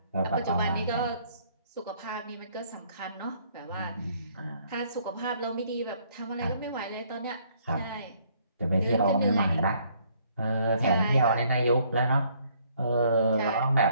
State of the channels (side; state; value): both; inverted; correlation -0.65